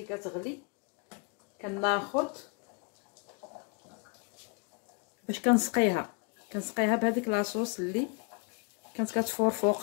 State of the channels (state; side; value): quieter; right; 32.9 dB